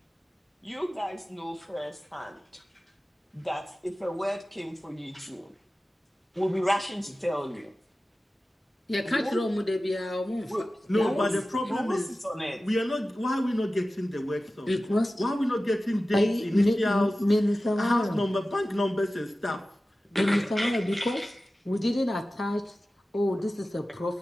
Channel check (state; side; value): normal; both; correlation 0.95